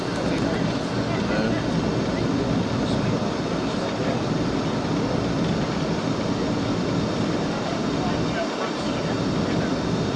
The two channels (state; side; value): identical; both; correlation 1.00